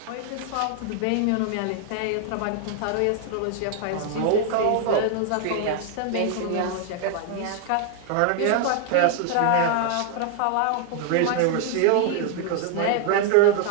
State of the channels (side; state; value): both; different; correlation 0.00